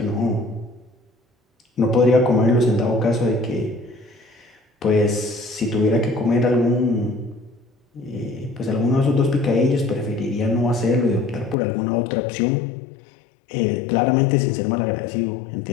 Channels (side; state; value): right; drops out; at 11.6 s